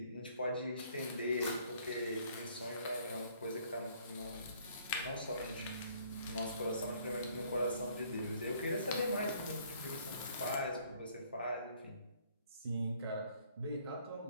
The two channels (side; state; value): both; inverted; correlation -0.62